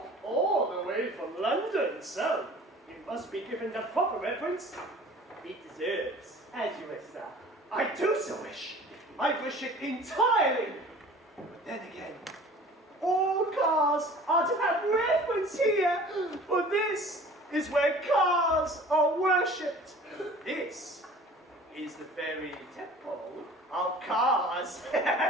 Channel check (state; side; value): normal; both; correlation 0.45